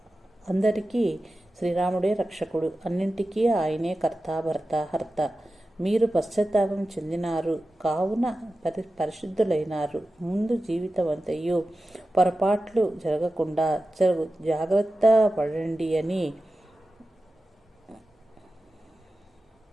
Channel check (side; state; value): both; normal; correlation 0.94